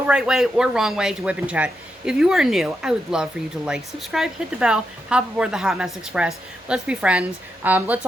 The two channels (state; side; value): normal; both; correlation 0.84